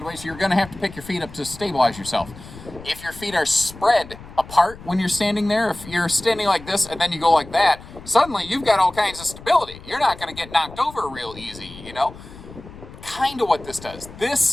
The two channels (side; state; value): left; noise; rumble, 17 dB below the sound